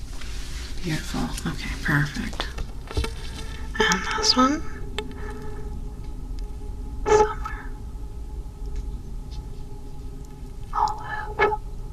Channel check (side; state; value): both; identical; correlation 1.00